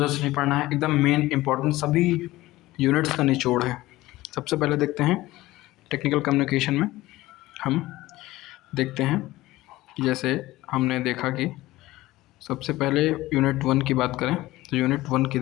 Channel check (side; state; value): right; quieter; 17.6 dB